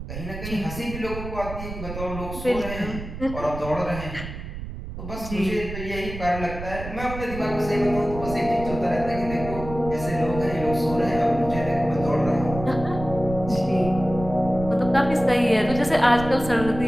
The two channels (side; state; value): right; noise; rumble, 9 dB below the sound